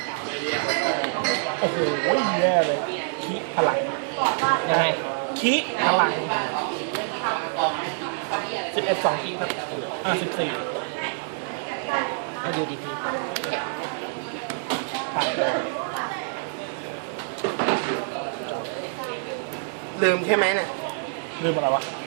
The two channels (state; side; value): silent; left; digital silence